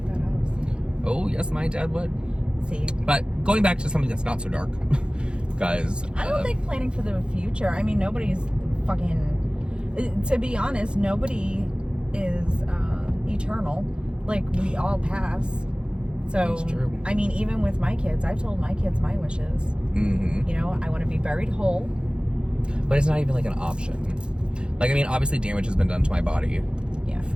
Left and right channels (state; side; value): late; left; 0.052 ms